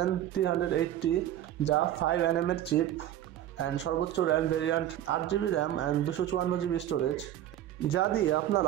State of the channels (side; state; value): left; quieter; 12.1 dB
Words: যা 5 nm এর চিপ অ্যান্ড সর্বোচ্চ RAM variant 8GB RAM and 254GB storage, যা দিয়ে